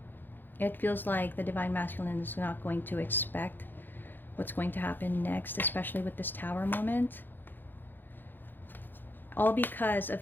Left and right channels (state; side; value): late; right; 0.093 ms